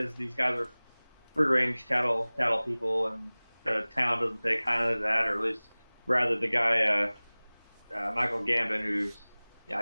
these guys are free-range cattle people, and the town doesn't take kind of that, or at least rather the guy Michael Gambon, who's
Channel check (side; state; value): both; inverted; correlation -1.00